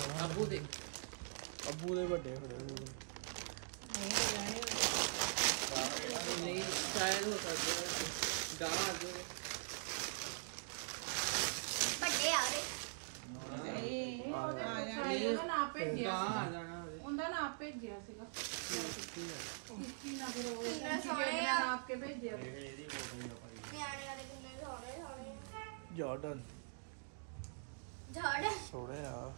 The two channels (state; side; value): silent; left; digital silence